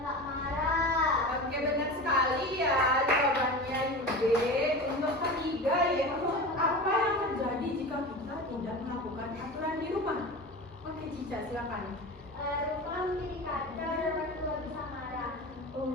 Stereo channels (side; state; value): both; normal; correlation 0.30